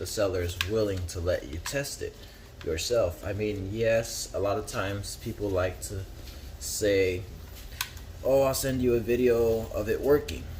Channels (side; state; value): both; identical; correlation 1.00